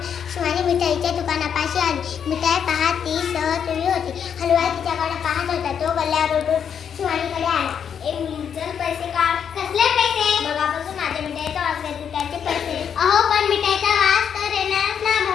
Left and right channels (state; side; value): quieter; right; 7.9 dB